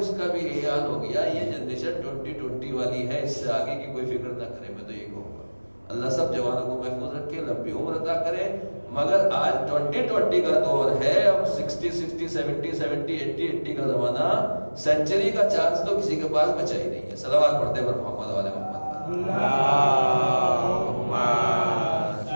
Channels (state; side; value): inverted; both; correlation -1.00